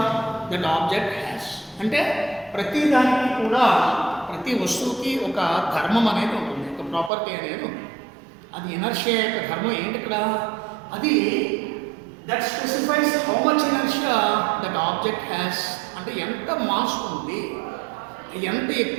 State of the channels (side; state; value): left; drops out; at 7.1 s